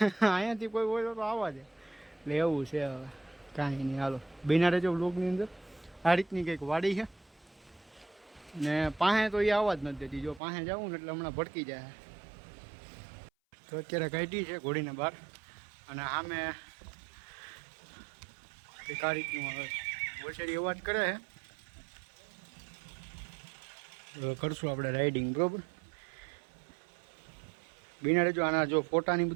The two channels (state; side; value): drops out; left; at 10.4 s